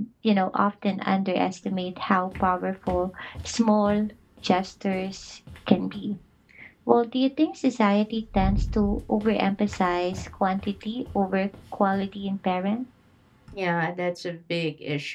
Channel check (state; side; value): identical; both; correlation 1.00